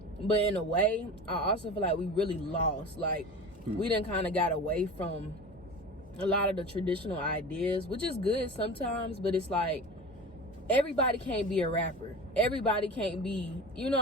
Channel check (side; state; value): both; normal; correlation 0.33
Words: But in a way, I also feel like we really lost. Like, we done kind of got away from a lot of the traditional ideas, which is good sometimes, but it's like, everybody can't be a rapper. Everybody can't be, you know